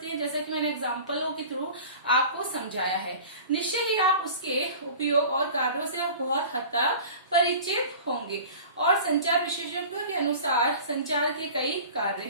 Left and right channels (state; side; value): inverted; both; correlation -0.40